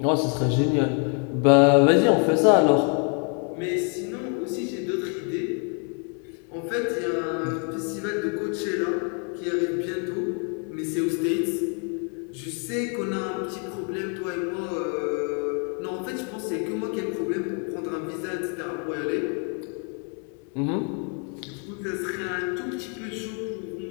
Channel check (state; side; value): quieter; right; 39.3 dB